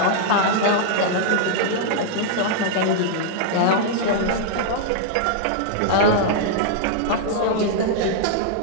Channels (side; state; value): both; different; correlation -0.01